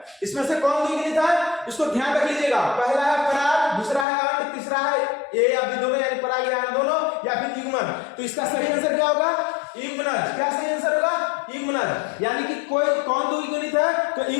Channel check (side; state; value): right; drops out; at 4.0 s